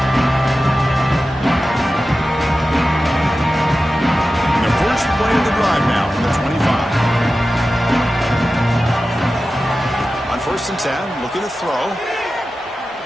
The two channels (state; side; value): normal; both; correlation 0.94